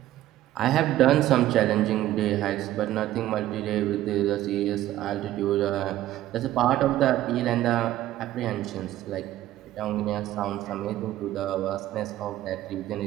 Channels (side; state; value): left; quieter; 14.1 dB